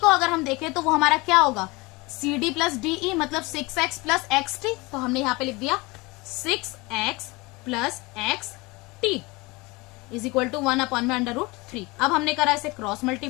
को अगर हम देखें तो वो हमारा क्या होगा, CD प्लस DE, मतलब 6x प्लस XT, तो हमने यहाँ पे लिख दिया 6x plus XT is equal to 1 upon में √3। अब हमने करा इसे क्रॉस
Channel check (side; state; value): right; quieter; 24.3 dB